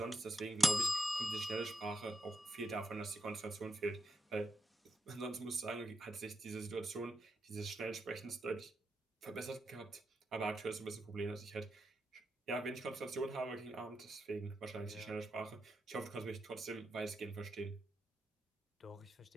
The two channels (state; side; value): normal; both; correlation 0.85